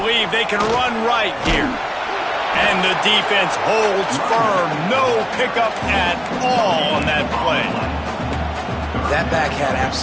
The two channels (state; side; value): identical; both; correlation 1.00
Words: they can run right here. And the defense holds firm. No pickup at all on that play. That back had